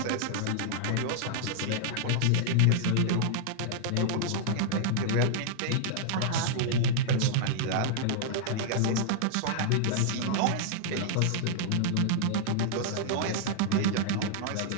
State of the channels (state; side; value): different; both; correlation -0.01